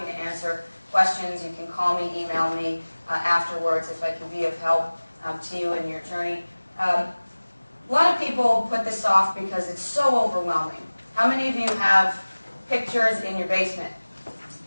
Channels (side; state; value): both; inverted; correlation -1.00